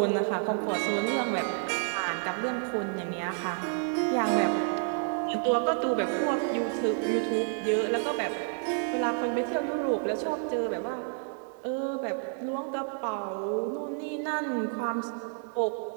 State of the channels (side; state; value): left; silent; 57 dB below the other